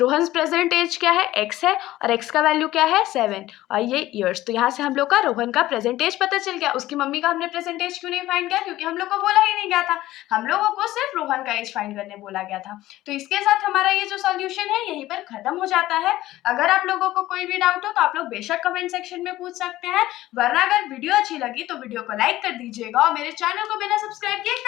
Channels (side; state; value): right; quieter; 15.7 dB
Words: present age क्या है, x है, और x का वैल्यू क्या है, 7, और ये ईयर्स। तो यहाँ से हम लोग का रोहन का प्रेजेंट एज पता चल गया। उसकी मम्मी का हमने प्रेजेंट एज क्यों नहीं फाइंड किया, क्योंकि हम लोग को बोला ही नहीं गया था, हम लोगों को सिर्फ रोहन का एज फाइंड करने बोला गया था। तो इसके साथ हमारा ये जो सॉल्यूशन है यहीं पर खत्म हो जाता है। अगर आप लोगों को कोई भी डाउट हो तो आप लोग बेशक कमेंट सेक्शन में पूछ सकते हैं, वरना अगर वीडियो अच्छी लगी तो वीडियो को लाइक कर दीजिएगा और मेरे चैनल को बिना सब्सक्राइब किए